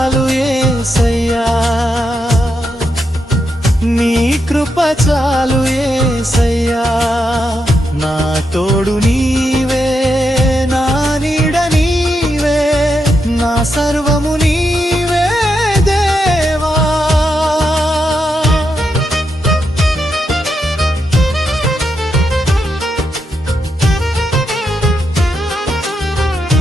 యేసయ్యా, నీ కృప చాలు యేసయ్యా. నా తోడు నీవే, నా నీడ నీవే, నా సర్వము నీవే దేవా.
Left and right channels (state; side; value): normal; both; correlation 0.83